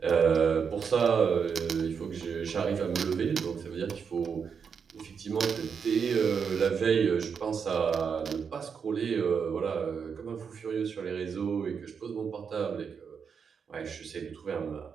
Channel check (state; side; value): quieter; left; 6.4 dB